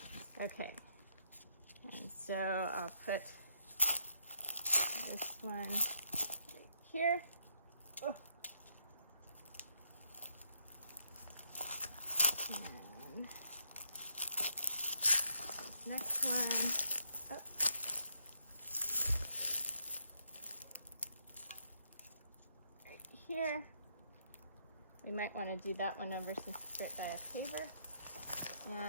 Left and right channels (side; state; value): both; inverted; correlation -0.74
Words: Okay. And so I'll put this one right here. Oh. And next one up. Right here. We might want to do that one over since it's right by a paver.